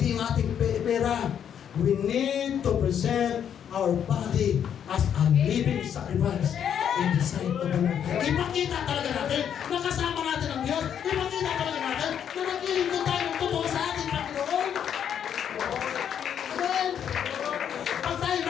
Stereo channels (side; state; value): right; quieter; 8.8 dB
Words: yung ating pera. We need to present our body as a living sacrifice in the sight of the Lord. Ipakita talaga natin na kasama natin ang Diyos. Ipakita talaga natin na naglilingkod tayo ng totoo sa ating Panginoon. Amen. Pag tayo